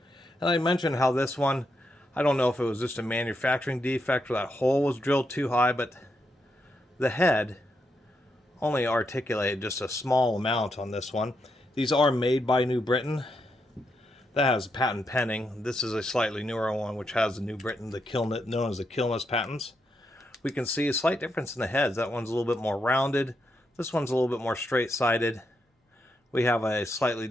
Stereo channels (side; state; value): both; normal; correlation 0.81